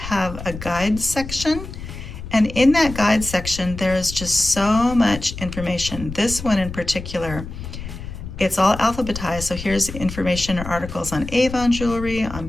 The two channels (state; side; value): noise; left; rumble, 10 dB below the sound